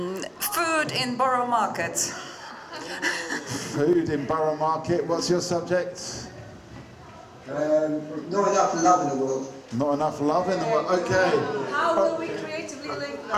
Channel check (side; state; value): both; identical; correlation 1.00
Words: Food in Borough Market. Food in Borough Market. What's your subject? Not enough love in the world. Not enough love in the world. Okay. How will we creatively link